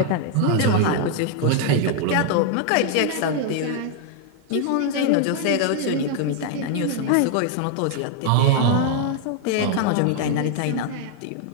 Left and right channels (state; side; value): different; both; correlation 0.00